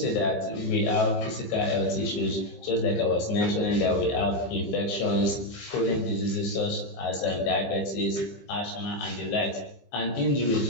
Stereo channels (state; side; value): late; right; 15 ms